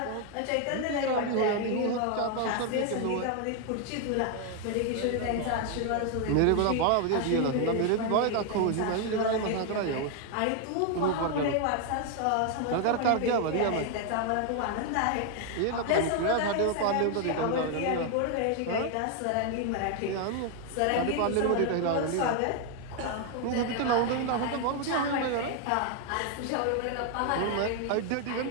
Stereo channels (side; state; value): both; different; correlation 0.00